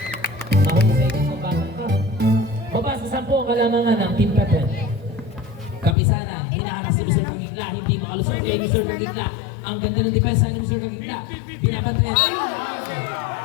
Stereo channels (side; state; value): right; drops out; at 6.0 s